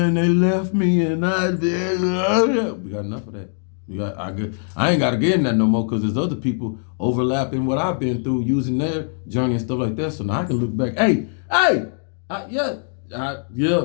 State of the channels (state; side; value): silent; right; digital silence